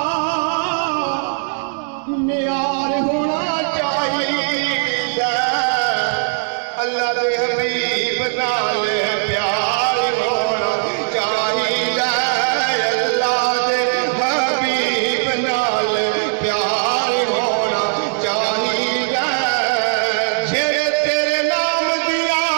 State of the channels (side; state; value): left; silent; 67 dB below the other